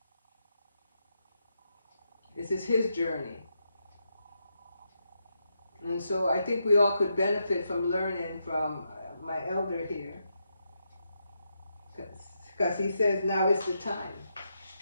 This is his journey. And so I think we all could benefit from learning from my elder here. Because he says now is the time.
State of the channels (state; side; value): inverted; both; correlation -0.83